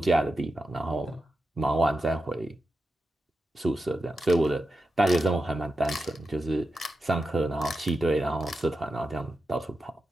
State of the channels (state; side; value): normal; both; correlation 0.90